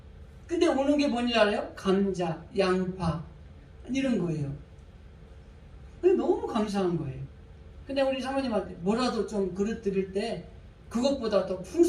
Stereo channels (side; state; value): both; identical; correlation 1.00